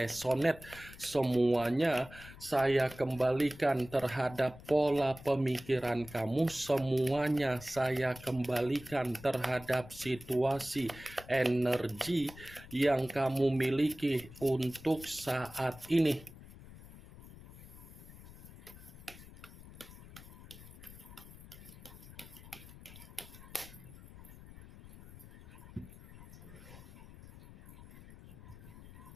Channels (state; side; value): noise; left; rumble, 17 dB below the sound